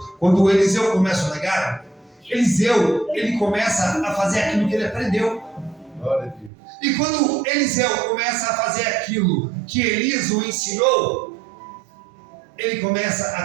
Quando o Eliseu começa o legado, Eliseu ele começa a fazer aquilo que ele aprendeu. Glória a Deus. E quando Eliseu começa a fazer aquilo que Elias o ensinou, ele começa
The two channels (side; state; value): left; drops out; at 6.5 s